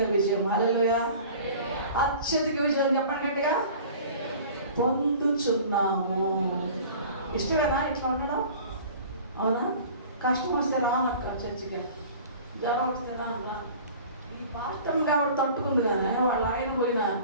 విజయం. హల్లెలూయా. అత్యధిక విజయం చెప్పండి గట్టిగా. పొందుచున్నాము. ఇష్టమేనా ఇట్లా ఉండడం? అవునా? కష్టం వస్తే రానక్క చర్చికి, జ్వరం వస్తే రాన్న. ఈ పాస్టర్ కాబట్టి తట్టుకుంది కానీ వాళ్ళ ఆయన పోయినా,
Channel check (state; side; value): inverted; both; correlation -0.44